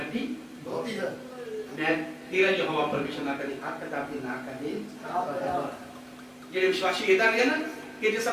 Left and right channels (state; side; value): identical; both; correlation 1.00